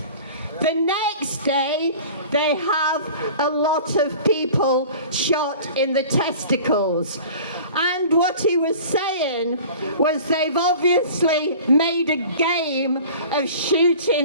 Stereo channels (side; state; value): both; inverted; correlation -0.42